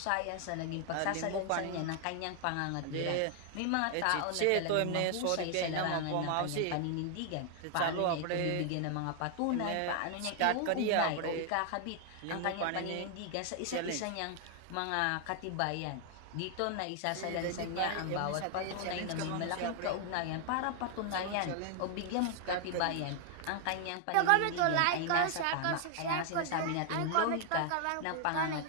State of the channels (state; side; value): different; both; correlation 0.00